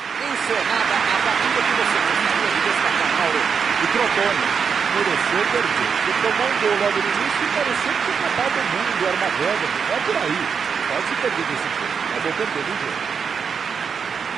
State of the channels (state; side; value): quieter; left; 6.3 dB